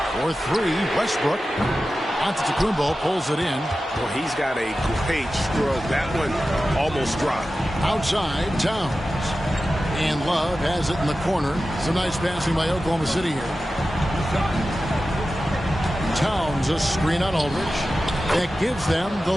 For 3, Westbrook. Antetokounmpo pulls it in. Well, he's got a great stroke. That one almost dropped. Outside Towns. And Love has it in the corner. Some nice passing by Oklahoma City here. Towns, a screen on Aldridge. That gives them the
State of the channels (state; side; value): normal; both; correlation 0.94